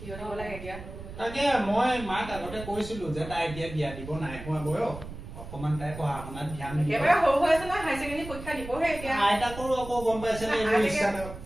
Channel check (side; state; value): right; noise; rumble, 12 dB below the sound